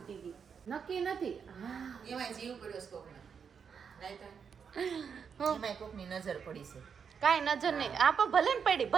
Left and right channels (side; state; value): left; quieter; 6.6 dB